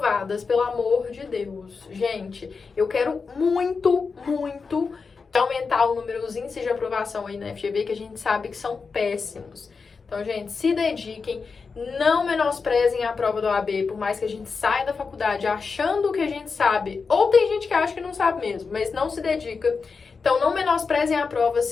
pelo amor de Deus. Gente, eu quero muito aumentar o número dos índices de aprovação aí na FGV, que a gente sabe que são péssimos. Então, gente, se dediquem, não menosprezem a prova do OAB, por mais que a gente saia da faculdade achando que a gente sabe, ou tem gente que acha que não sabe mesmo, mas não se dedica. Então, não menosprezem a prova,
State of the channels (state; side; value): quieter; right; 4.9 dB